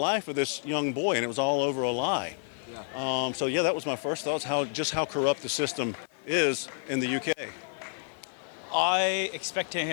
of this young boy, and it was all over a lie. Yeah. So that was my first thoughts, how corrupt the system is in the UK. I expected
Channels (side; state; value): right; silent; digital silence